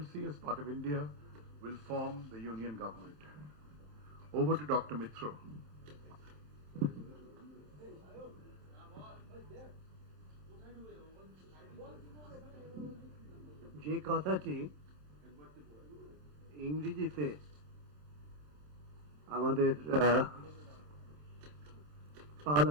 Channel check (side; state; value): left; late; 27 ms